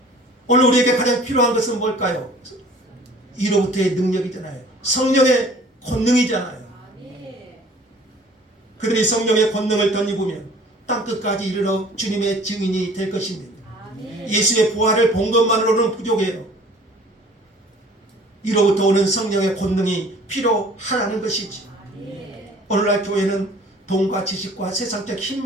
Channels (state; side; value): normal; both; correlation 0.50